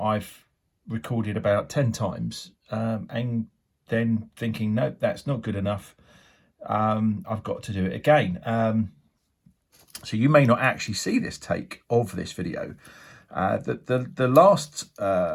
recorded about 10 times and then thinking, nope, that's not good enough. I've got to do it again. So you may not actually see this take of this video. The last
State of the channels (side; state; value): both; identical; correlation 1.00